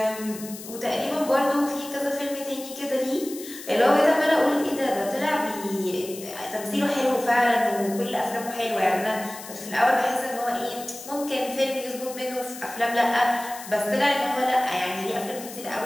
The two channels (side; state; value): left; noise; hiss, 13 dB below the sound